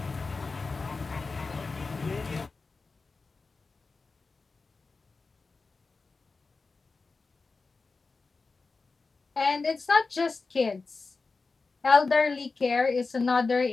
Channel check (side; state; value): right; quieter; 4.1 dB